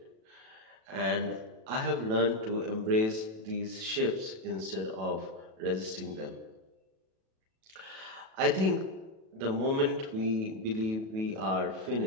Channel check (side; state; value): left; late; 37 ms